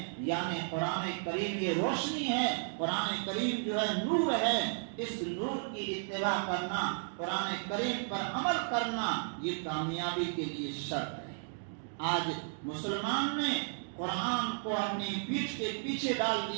یعنی قرآن کریم یہ روشنی ہے، قرآن کریم جو ہے نور ہے۔ اس نور کی اتباع کرنا، قرآن کریم پر عمل کرنا، یہ کامیابی کے لیے شرط ہے۔ آج مسلمان نے قرآن کو اپنی پیٹھ کے پیچھے ڈال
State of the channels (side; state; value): left; silent; digital silence